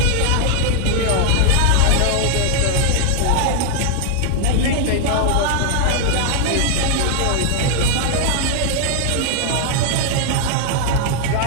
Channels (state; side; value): different; both; correlation 0.00